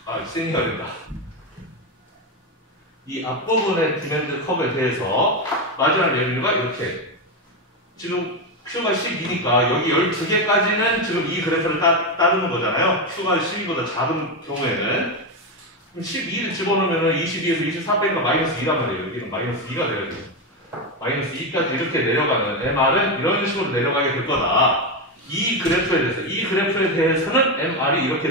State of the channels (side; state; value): both; normal; correlation 0.11